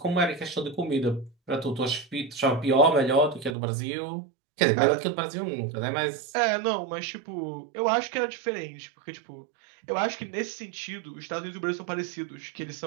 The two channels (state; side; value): drops out; left; at 3.6 s